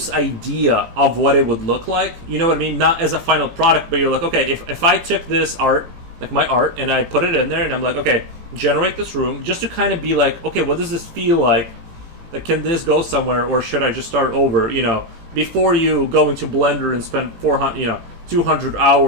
idea of what it would look like, you know what I mean? Not as a final product, but you're like, okay, if I took this art, like my art, and I put it in there, and I'm like, okay, generate this room, just to kind of be like, okay, what does this feel like? Like, can this go somewhere, or should I just start over? You know, before you go into Blender and spend 200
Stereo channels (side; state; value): left; late; 18 ms